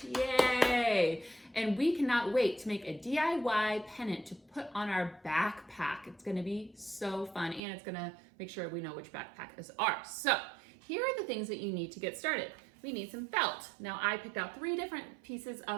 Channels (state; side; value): drops out; left; at 7.6 s